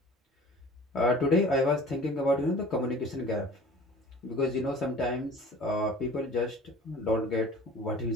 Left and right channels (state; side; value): normal; both; correlation 0.45